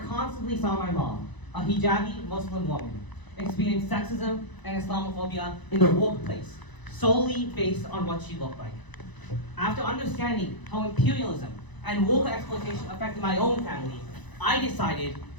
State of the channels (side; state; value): right; late; 1.0 ms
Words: saw my mom, a hijabi Muslim woman, experience sexism and Islamophobia in the workplace, solely based on what she looked like. After understanding how imperialism and worker exploitation affected my own family, I decided